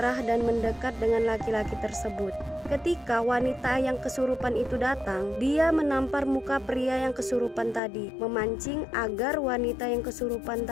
dan mendekat dengan laki-laki tersebut. Ketika wanita yang kesurupan itu datang, dia menampar muka pria yang kesurupan tadi, memancing agar wanita yang kesurupan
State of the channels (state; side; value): drops out; right; at 7.8 s